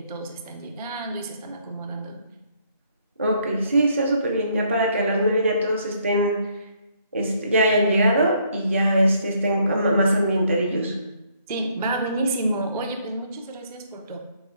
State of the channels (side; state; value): both; inverted; correlation -0.68